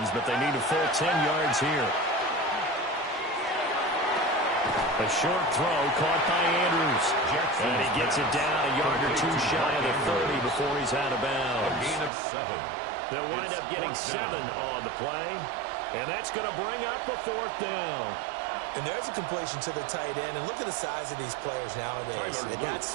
but they need a full 10 yards here. A short throw caught by Andrews. And he gets it down a yard or 2 shy of the 30 before he's out of bounds. A gain of 7. They'll wind up getting 7 on the play. And that's going to bring up a 4th down. And there's a completion to the tight end. And look at the size of these players nowadays. At that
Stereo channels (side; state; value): left; drops out; at 12.1 s